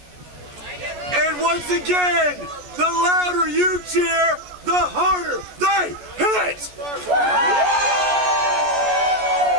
And once again, the louder you cheer, the harder they hit.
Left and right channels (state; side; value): late; left; 14 ms